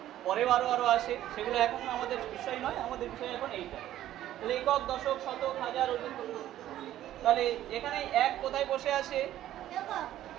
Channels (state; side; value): quieter; left; 12.9 dB